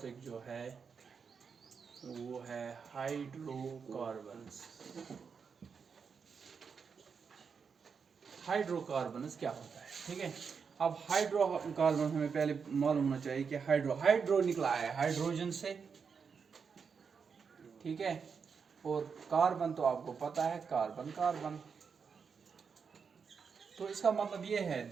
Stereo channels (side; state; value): left; quieter; 6.0 dB